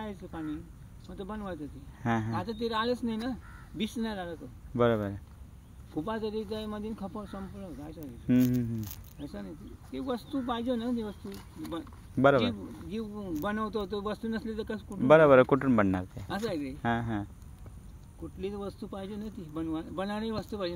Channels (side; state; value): both; identical; correlation 1.00